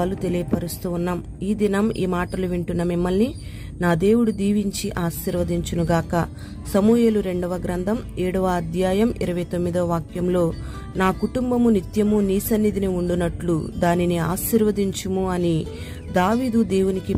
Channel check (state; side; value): identical; both; correlation 1.00